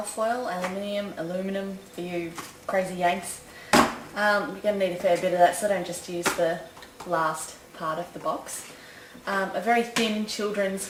aluminum for you crazy Yanks. You're going to need a fair bit of that, so don't just use the last part of the box. A very thin children's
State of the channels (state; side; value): identical; both; correlation 1.00